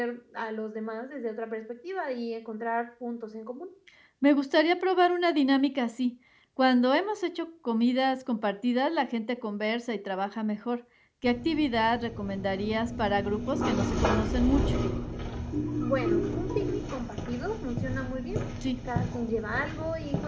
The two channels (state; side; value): identical; both; correlation 1.00